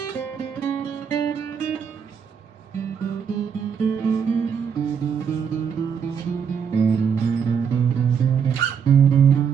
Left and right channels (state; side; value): quieter; left; 7.1 dB